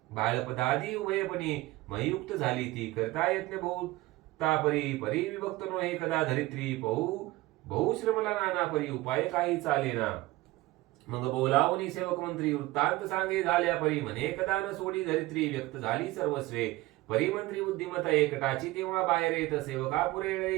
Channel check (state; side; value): quieter; left; 19.1 dB